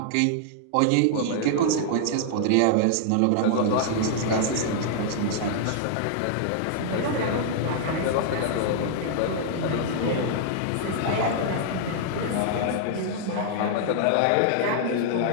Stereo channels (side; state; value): both; different; correlation -0.01